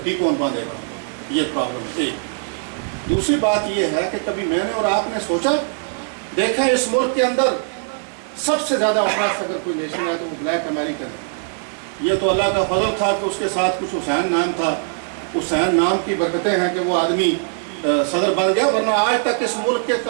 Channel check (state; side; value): silent; left; 65 dB below the other